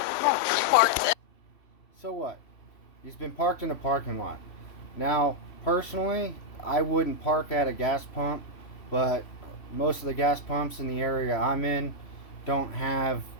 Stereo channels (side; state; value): right; late; 3.1 ms